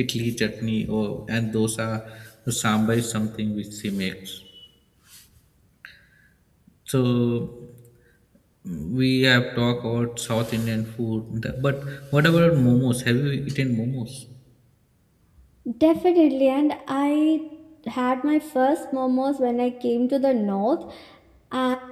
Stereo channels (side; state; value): both; identical; correlation 1.00